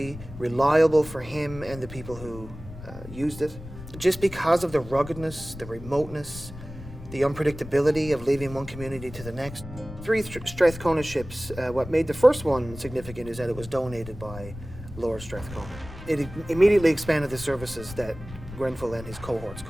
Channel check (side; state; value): left; noise; rumble, 14 dB below the sound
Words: reliable for him and the people who used it, just because of the ruggedness, the remoteness, the unpredictability of leaving one community to the next. 3 Strathcona ships, what made the first one significant is that it was donated by Lord Strathcona. It immediately expanded the services that Grenfell and his cohorts